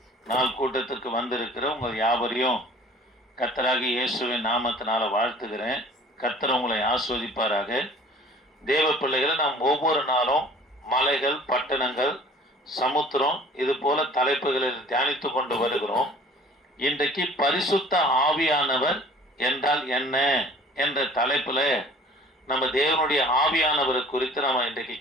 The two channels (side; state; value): both; normal; correlation 0.49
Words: நாள் கூட்டத்திற்கு வந்திருக்கிற உங்கள் யாவரையும் கர்த்தராகிய இயேசுவின் நாமத்தினால வாழ்த்துகிறேன். கர்த்தர் உங்களை ஆஸ்வதிப்பாராக. தேவ பிள்ளைகளை நாம் ஒவ்வொரு நாளும் மலைகள், பட்டணங்கள், சமுத்திரம் இது போல தலைப்புகளில் தியானித்து கொண்டு வருகிறோம். இன்றைக்கு பரிசுத்த ஆவியானவர் என்றால் என்ன என்ற தலைப்பில் நம்ம தேவனுடைய ஆவியானவர் குறித்து நம்ம இன்றைக்கு